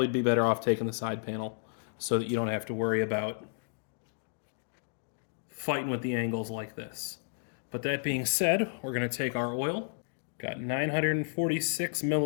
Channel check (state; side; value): silent; right; digital silence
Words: be better off taking the side panel so that you don't have to worry about fighting with the angles like this. But that being said, we're going to take our oil. Got 946